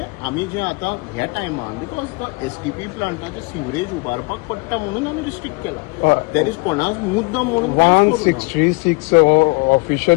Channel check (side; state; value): right; quieter; 28.0 dB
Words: आमी जे आतां ह्या टायमान बिकॉज द STP प्लांटाचे सिवरेज उबारपाक पडटा म्हणून आमी रिस्ट्रिक्ट केला. देर इज कोणाच मुद्दम म्हणून 166